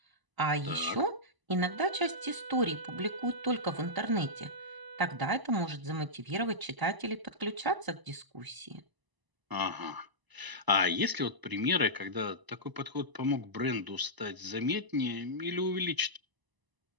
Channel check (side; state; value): left; late; 1.0 ms